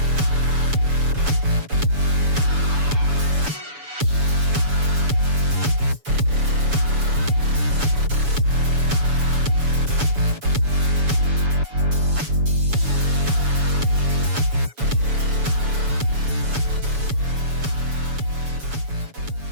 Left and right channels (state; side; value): late; left; 7.0 ms